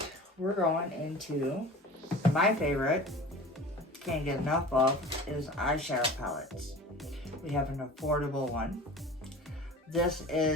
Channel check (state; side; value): normal; both; correlation 0.39